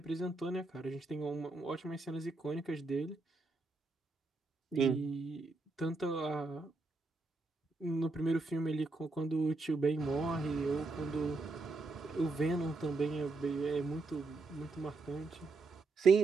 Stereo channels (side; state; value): left; quieter; 3.6 dB